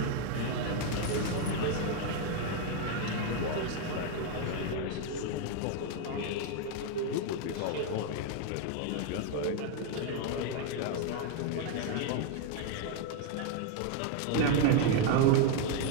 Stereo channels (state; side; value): different; both; correlation 0.01